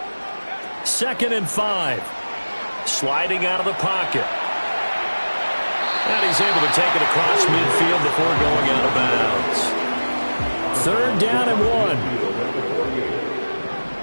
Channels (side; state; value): both; inverted; correlation -1.00